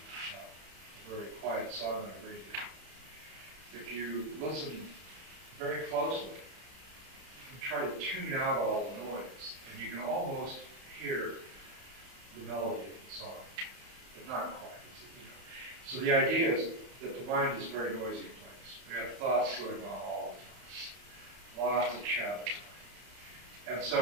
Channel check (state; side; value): late; left; 31 ms